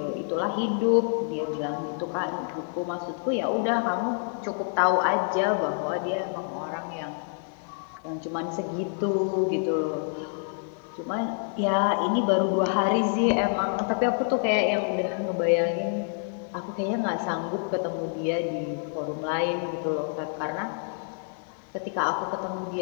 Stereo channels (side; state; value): right; silent; 56 dB below the other